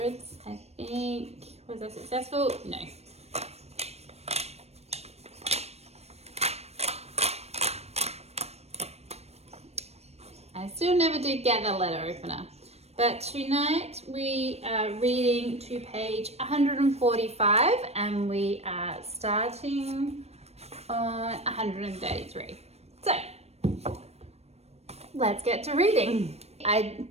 I think, was I successful? No. I still never did get the letter opener. But tonight we are reading to page 145 and we are starting on 133. So, let's get to reading. I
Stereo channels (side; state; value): left; late; 0.31 ms